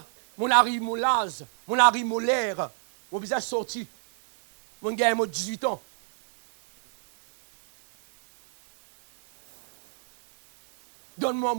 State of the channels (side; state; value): left; silent; 61 dB below the other